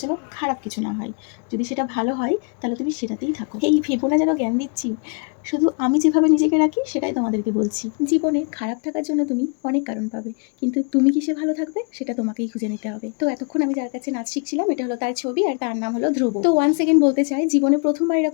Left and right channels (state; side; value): quieter; right; 38.4 dB